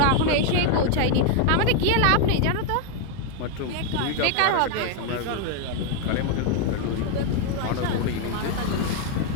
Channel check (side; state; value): both; different; correlation 0.01